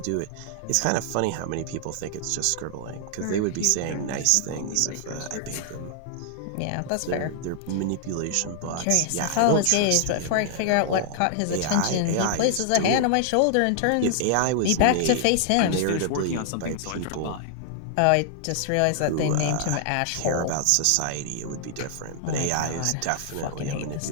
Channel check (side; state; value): both; different; correlation -0.01